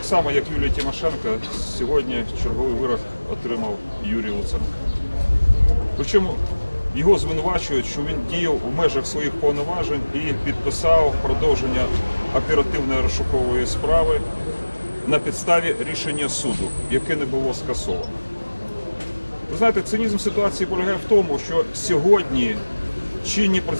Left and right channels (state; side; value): inverted; both; correlation -1.00